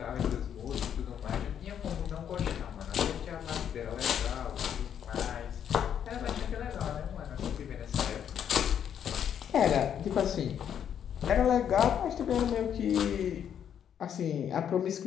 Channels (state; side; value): quieter; right; 8.9 dB